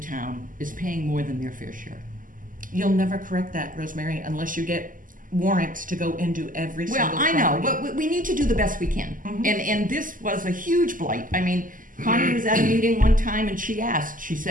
is paying more than their fair share. You'll never correct that, Rosemary, unless you get warrants to go into every Well, single I know, property. but we need to do the best we can. Mhm. And this was a huge blight. I mean, Connie was at a meeting one time and she asked, she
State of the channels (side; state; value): left; late; 0.39 ms